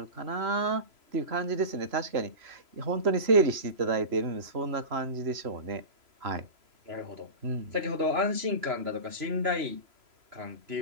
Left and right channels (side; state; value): left; late; 3.0 ms